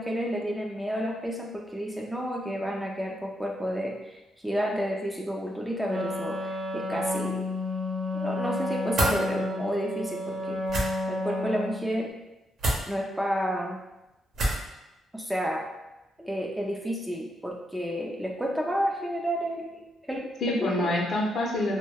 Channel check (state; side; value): normal; both; correlation 0.80